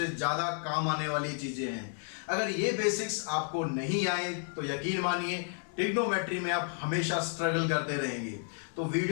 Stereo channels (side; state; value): right; silent; 57 dB below the other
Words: ज्यादा काम आने वाली चीजें हैं। अगर ये बेसिक्स आपको नहीं आए तो यकीन मानिए ट्रिग्नोमेट्री में आप हमेशा स्ट्रगल करते रहेंगे। तो